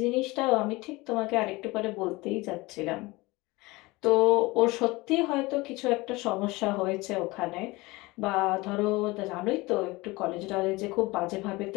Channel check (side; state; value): right; quieter; 22.2 dB